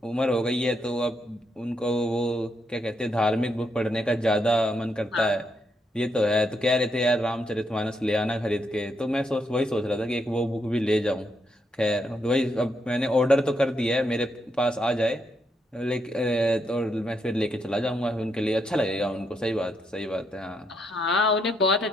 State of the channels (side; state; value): both; normal; correlation 0.79